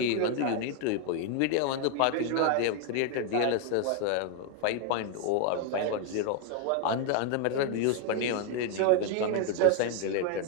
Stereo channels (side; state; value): both; different; correlation 0.01